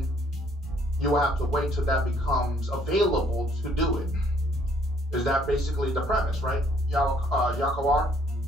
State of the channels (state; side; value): normal; both; correlation 0.64